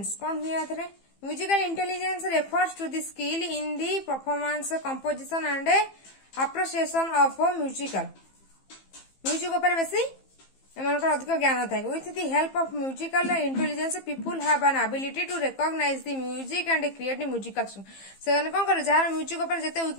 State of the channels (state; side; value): late; right; 15 ms